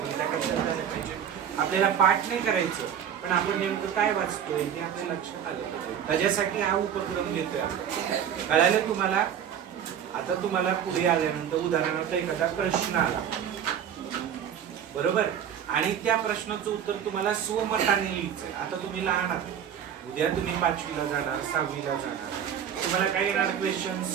त्या कशात झालं पाहिजे. आपल्याला पाठ नाही करायचं, पण आपण नेमकं काय वाचतोय हे आपल्या लक्षात आलं पाहिजे. त्याच्यासाठी हा उपक्रम घेतोय आपण. कळालं तुम्हाला. आता तुम्हाला पुढे आल्यानंतर उदाहरणार्थ एखादा प्रश्न आला, बरोबर, आणि त्या प्रश्नाचं उत्तर तुम्हाला स्वमताने लिहायचंय. आता तुम्ही लहान आहात, उद्या तुम्ही 5वीला जाणार, 6वीला जाणार. तुम्हाला काय येणार क्वेश्चन.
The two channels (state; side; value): quieter; left; 8.9 dB